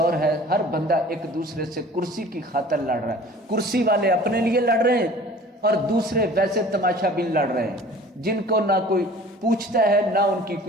ہے، ہر بندہ ایک دوسرے سے کرسی کی خاطر لڑ رہا ہے۔ کرسی والے اپنے لیے لڑ رہے ہیں اور دوسرے ویسے تماشا بین لڑ رہے ہیں، جن کو نہ کوئی پوچھتا ہے نہ ان کی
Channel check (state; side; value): normal; both; correlation 0.46